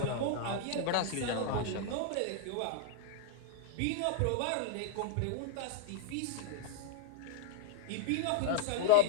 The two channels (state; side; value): different; both; correlation -0.01